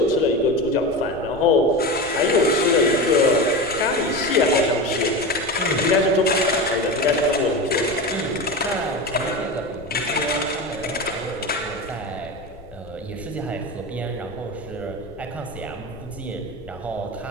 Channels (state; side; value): noise; left; rumble, 19 dB below the sound